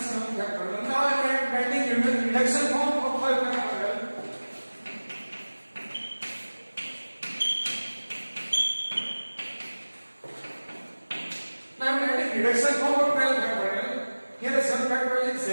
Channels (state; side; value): inverted; both; correlation -1.00